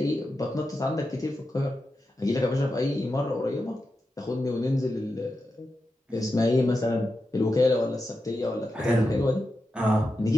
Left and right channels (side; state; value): both; normal; correlation 0.89